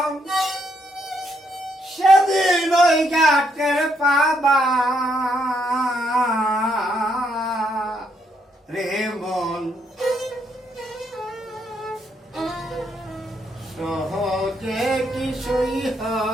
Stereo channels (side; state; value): both; normal; correlation 0.75